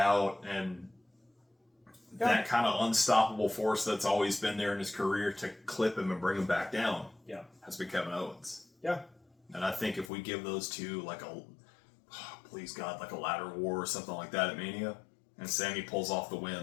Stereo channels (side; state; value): right; drops out; at 10.1 s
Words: and that kind of unstoppable force that's always been there in his career to clip him and bring him back down has been Kevin Owens. Yeah. And I think if we give those two like please God, like a ladder war or something like that at Mania, and Sami pulls off the